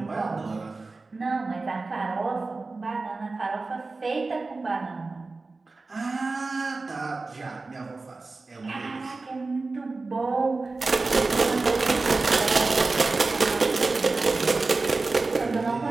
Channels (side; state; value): left; quieter; 3.7 dB